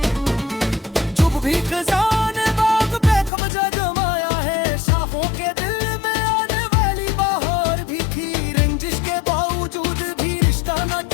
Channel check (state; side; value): drops out; right; at 3.3 s